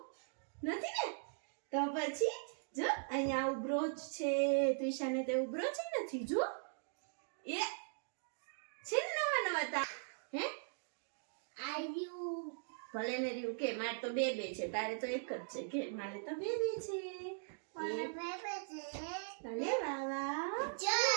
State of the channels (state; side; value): silent; left; digital silence